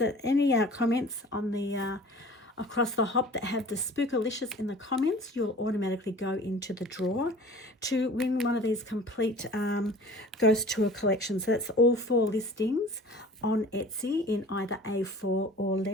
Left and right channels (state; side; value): normal; both; correlation 0.44